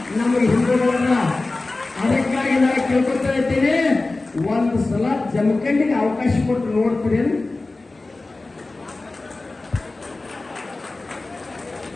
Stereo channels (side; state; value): right; quieter; 3.2 dB